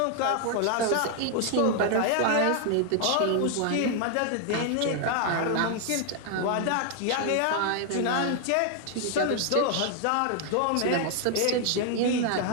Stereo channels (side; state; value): both; different; correlation 0.00